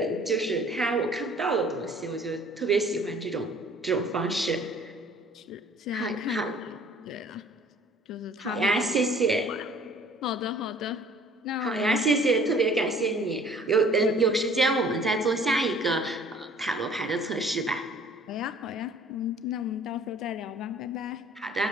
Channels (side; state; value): both; normal; correlation 0.53